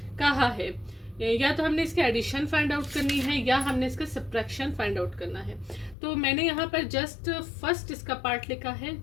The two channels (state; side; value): drops out; right; at 6.0 s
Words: कहा है, या तो हमने इसके एडिशन फाइंड आउट करनी है या हमने इसका सब्ट्रैक्शन फाइंड आउट करना है। तो मैंने यहाँ पर जस्ट फर्स्ट इसका पार्ट लिखा है,